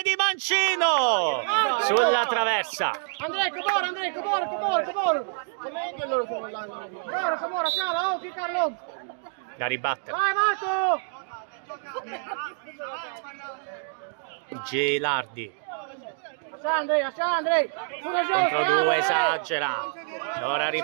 di mancino sulla traversa. Andrea, Cabora. Com'è quello che Cabora, ciao, Carlo. Da ribattere. Vai Marco! Gelardi. Andrea. Contro due, esagera. Ora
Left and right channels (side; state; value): left; silent; digital silence